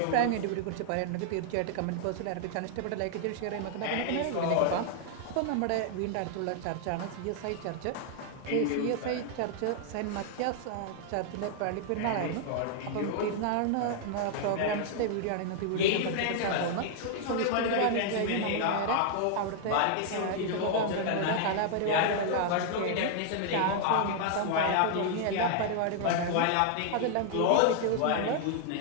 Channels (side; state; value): both; different; correlation 0.00